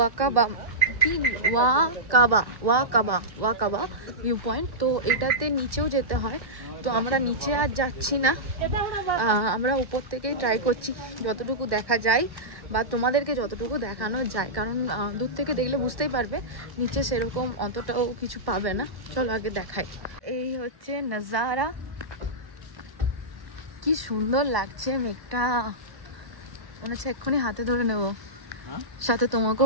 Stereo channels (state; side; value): late; left; 1.1 ms